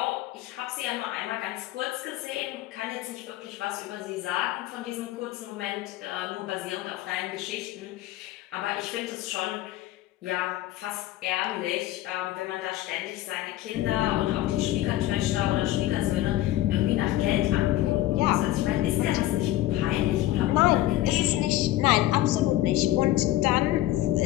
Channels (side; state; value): right; quieter; 15.2 dB